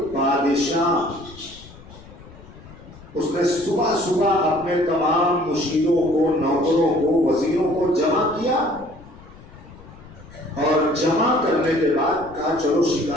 بادشاہ، اس نے صبح صبح اپنے تمام مشیروں کو، نوکروں کو، وزیروں کو جمع کیا، اور جمع کرنے کے بعد کہا چلو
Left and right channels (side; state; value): left; noise; rumble, 20 dB below the sound